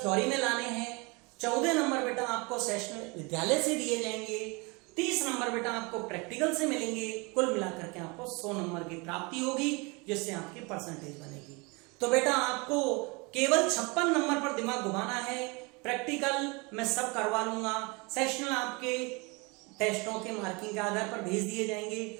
में लाने हैं। 14 नंबर बेटा आपको सेशनल विद्यालय से दिए जाएंगे, 30 नंबर बेटा आपको प्रैक्टिकल से मिलेंगे। कुल मिलाकर के आपको 100 नंबर की प्राप्ति होगी, जिससे आपकी परसेंटेज बनेगी। तो बेटा आपको केवल 56 नंबर पर दिमाग घुमाना है। प्रैक्टिकल मैं सब करवा लूंगा, सेशनल आपके टेस्टों के मार्किंग के आधार पर भेज दिए जाएंगे।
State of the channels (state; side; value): quieter; left; 28.3 dB